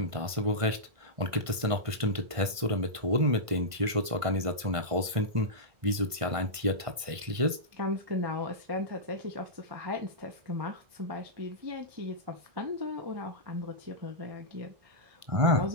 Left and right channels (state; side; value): late; left; 1.5 ms